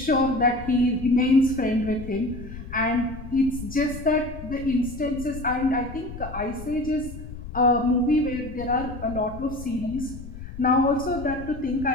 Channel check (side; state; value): left; noise; rumble, 12 dB below the sound